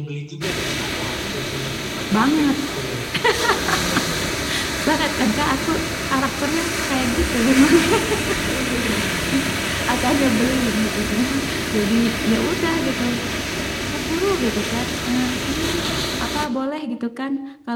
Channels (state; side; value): identical; both; correlation 1.00